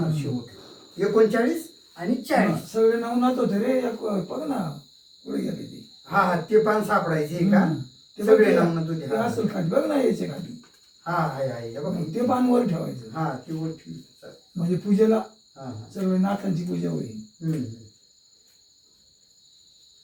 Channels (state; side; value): identical; both; correlation 1.00